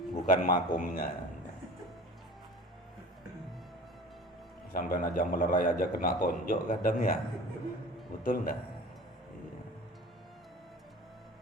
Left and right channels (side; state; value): both; normal; correlation 0.40